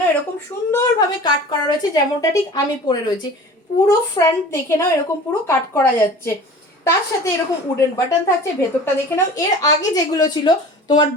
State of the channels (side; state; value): both; normal; correlation 0.40